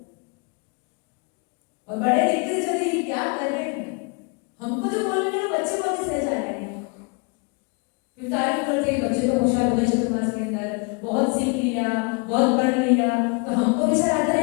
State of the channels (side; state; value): right; quieter; 31.6 dB